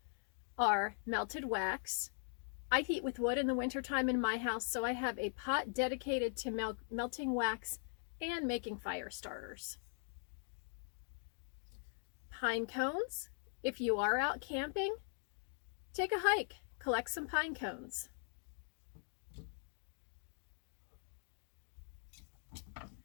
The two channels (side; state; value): right; silent; digital silence